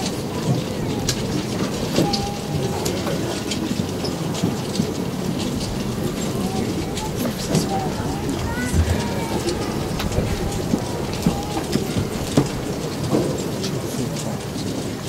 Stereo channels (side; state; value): both; identical; correlation 1.00